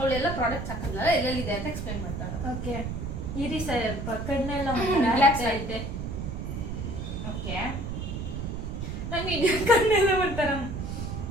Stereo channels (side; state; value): right; noise; rumble, 5 dB below the sound